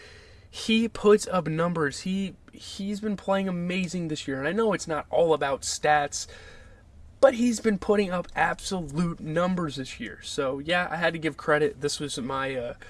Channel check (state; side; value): identical; both; correlation 1.00